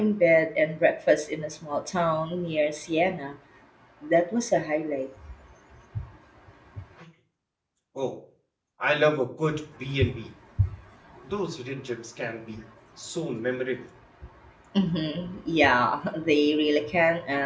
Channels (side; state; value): both; identical; correlation 1.00